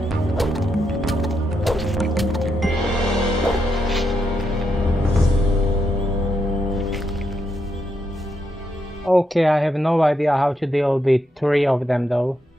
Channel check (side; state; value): both; normal; correlation 0.81